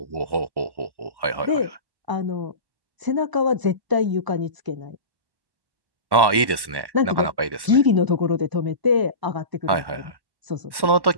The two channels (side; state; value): left; late; 1.1 ms